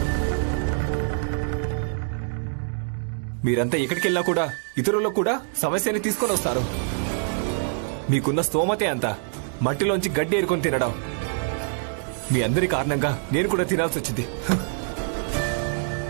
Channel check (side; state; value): left; silent; digital silence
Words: మీరంతా ఎక్కడికి వెళ్ళినా కూడా ఇతరులకు కూడా సమస్యని తీసుకొని వస్తారు. మీకున్న స్తోమతే అంత, మట్టిలోంచి గడ్డి ఏరుకొని తినడం. మీ అందరి కారణంగా నేను కూడా తినాల్సి వచ్చింది.